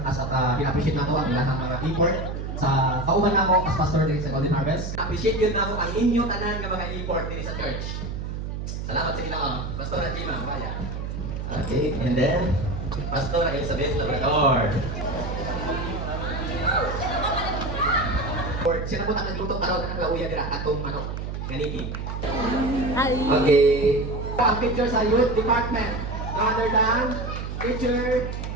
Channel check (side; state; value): right; noise; hum, 5 dB below the sound